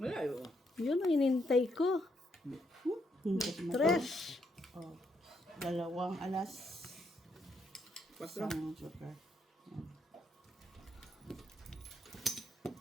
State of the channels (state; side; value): normal; both; correlation 0.76